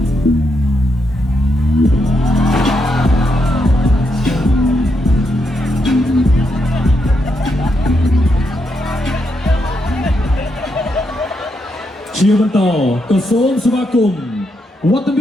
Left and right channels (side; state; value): both; normal; correlation 0.81